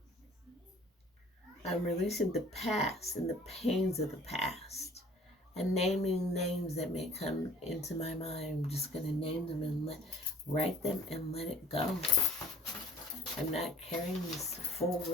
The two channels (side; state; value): both; normal; correlation 0.49